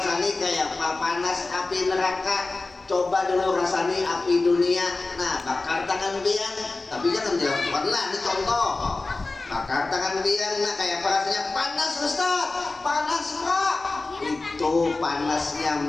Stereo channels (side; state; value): right; quieter; 3.4 dB